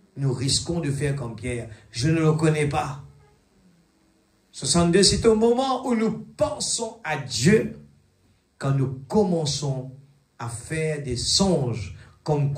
Nous risquons de faire comme Pierre. Je ne le connais pas. 62, c'est au moment où nous pensons à Dieu, quand nous commençons à faire des songes comme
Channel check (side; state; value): both; identical; correlation 1.00